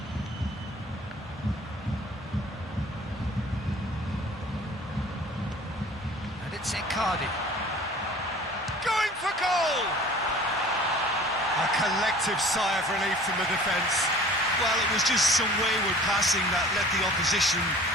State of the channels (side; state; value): left; noise; hum, 27 dB below the sound